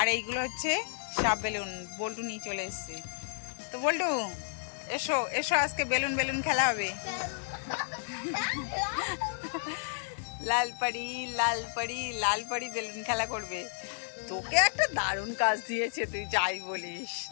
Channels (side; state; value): right; silent; digital silence